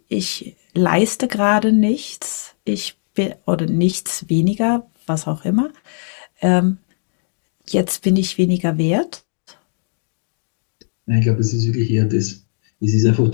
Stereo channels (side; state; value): right; silent; digital silence